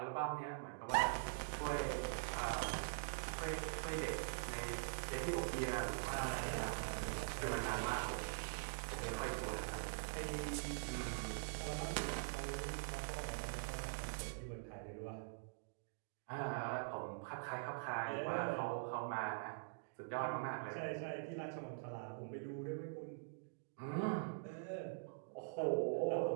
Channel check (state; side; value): silent; left; digital silence